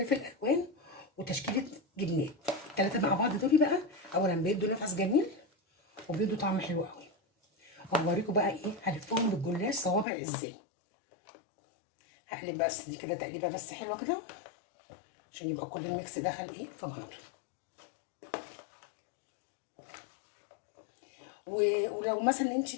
الوان، وتشكيله جبنات. الثلاثه مع بعض دول بقى اولا بيدوا نفس جميل وبيدوا طعم حلو قوي. وهوريكم بقى ايه هلفهم بالجلاش صوابع ازاي. هقلب بس دي كده تقليبه بس حلوه كده عشان يبقى كل الميكس دخل ايه في بعضه. ولو مثلا انت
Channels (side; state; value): right; drops out; at 10.1 s